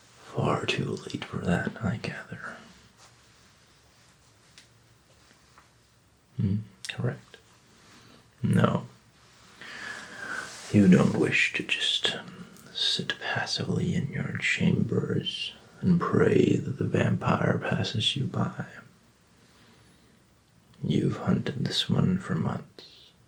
Far too late for that, I gather. Correct. No. You don't wish to just sit passively in your chambers and pray that the vampire passes you by. You've hunted this one for months.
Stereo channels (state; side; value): identical; both; correlation 1.00